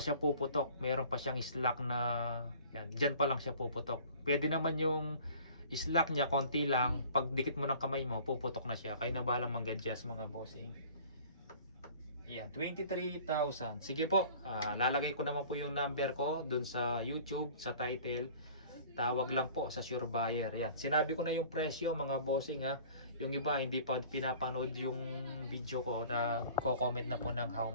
puputok, meron pa siyang slack na yan, dyan pa lang siya puputok. Pwede naman yung slack niya konti lang, pag dikit mo ng kamay mo puputok na siya. Kayo na balang mag-adjust mga bossing. Yan, 23,000. Sige po, lalagay ko naman po yung number ko dun sa YouTube, sa title. Tawag lang po sa sure buyer. Yan, sinabi ko na yung presyo mga bossing ha. Yung iba hindi pa pinapanood yung video ko, na ko-comment na po ng how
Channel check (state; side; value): inverted; both; correlation -0.48